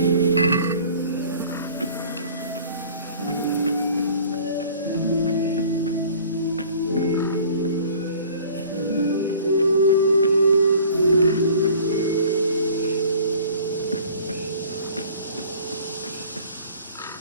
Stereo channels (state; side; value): inverted; both; correlation -0.49